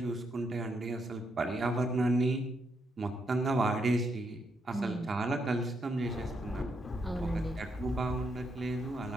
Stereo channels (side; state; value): both; normal; correlation 0.78